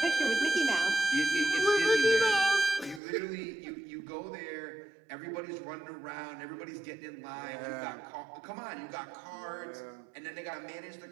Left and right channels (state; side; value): drops out; left; at 3.0 s